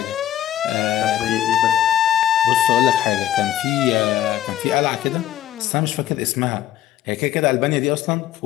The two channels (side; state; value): right; quieter; 12.2 dB